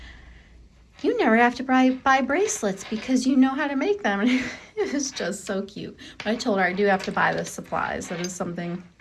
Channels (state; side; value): identical; both; correlation 1.00